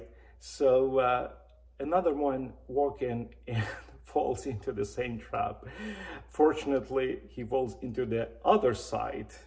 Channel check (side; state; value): both; identical; correlation 1.00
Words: So another one walking and falls into the same trap. Fortunately, he falls into the other side